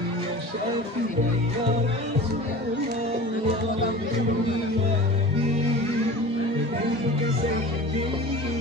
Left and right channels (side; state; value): both; normal; correlation 0.37